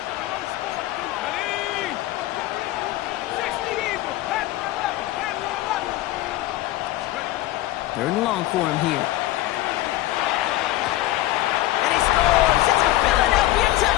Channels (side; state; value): right; quieter; 16.2 dB